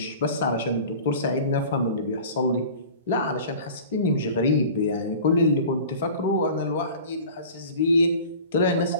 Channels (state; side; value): inverted; both; correlation -0.41